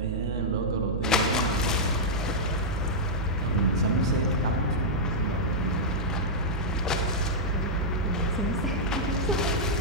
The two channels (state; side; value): noise; right; hum, 3 dB below the sound